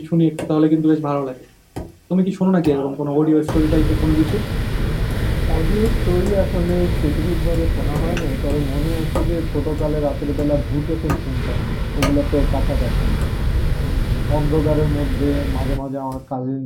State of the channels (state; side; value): identical; both; correlation 1.00